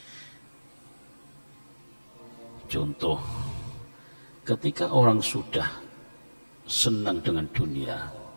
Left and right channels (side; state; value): both; inverted; correlation -1.00